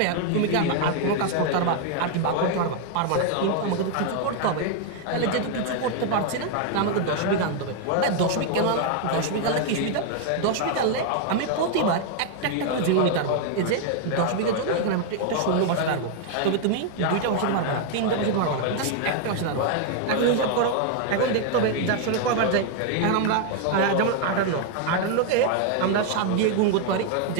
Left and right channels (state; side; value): different; both; correlation 0.00